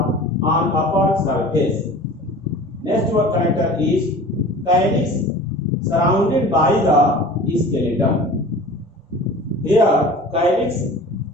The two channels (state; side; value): normal; both; correlation 0.40